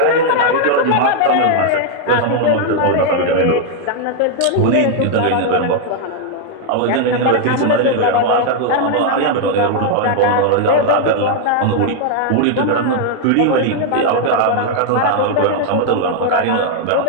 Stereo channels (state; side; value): different; both; correlation 0.00